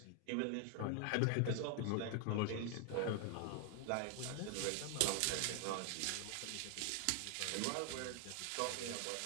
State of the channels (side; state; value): both; different; correlation 0.00